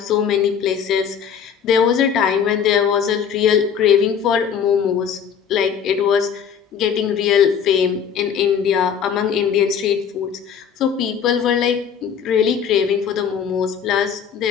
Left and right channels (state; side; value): quieter; right; 7.6 dB